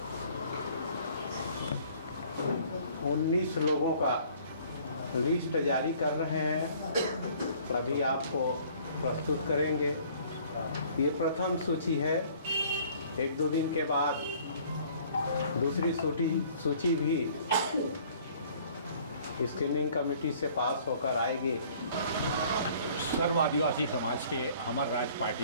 19 लोगों का लिस्ट जारी कर रहे हैं, अभी आपको प्रस्तुत करेंगे। ये प्रथम सूची है। 1-2 दिन के बाद दूसरी सूची भी स्क्रीनिंग कमेटी से पास होकर आएगी। सर्व आदिवासी समाज के हमार राज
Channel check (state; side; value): inverted; both; correlation -0.55